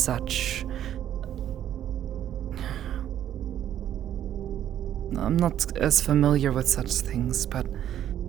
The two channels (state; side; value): quieter; left; 10.9 dB